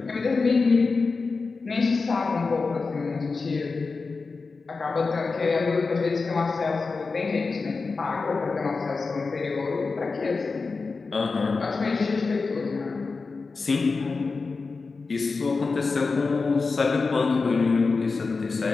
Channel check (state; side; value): quieter; right; 4.3 dB